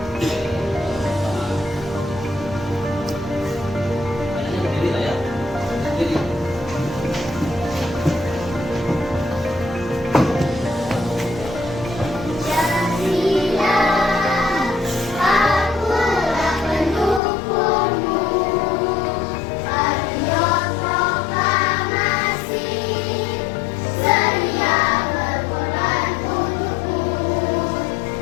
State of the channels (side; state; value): right; drops out; at 17.2 s